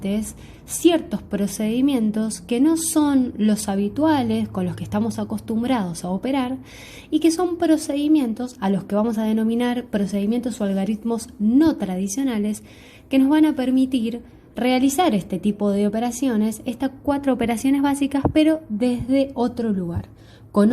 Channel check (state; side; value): identical; both; correlation 1.00